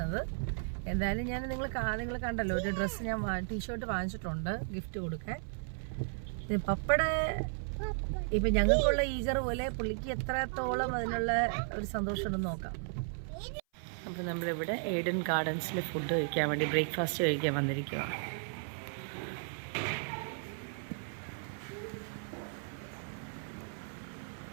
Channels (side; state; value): left; silent; 55 dB below the other